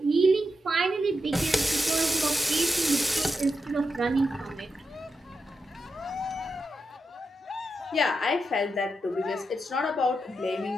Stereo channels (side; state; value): both; normal; correlation 0.87